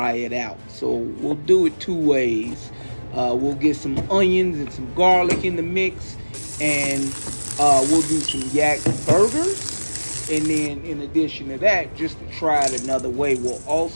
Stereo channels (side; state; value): both; inverted; correlation -1.00